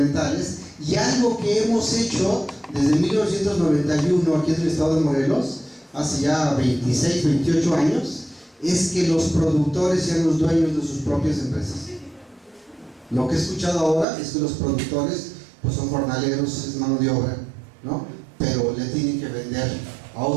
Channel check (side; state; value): left; drops out; at 14.1 s